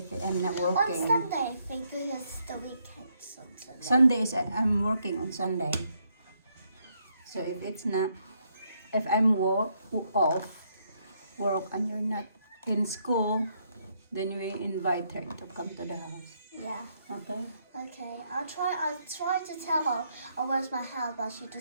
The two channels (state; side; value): inverted; both; correlation -0.75